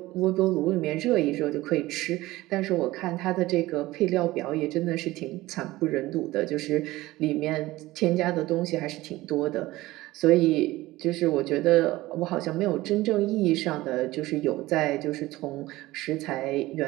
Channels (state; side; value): quieter; left; 18.2 dB